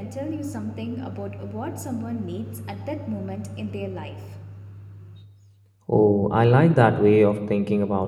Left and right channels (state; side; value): identical; both; correlation 1.00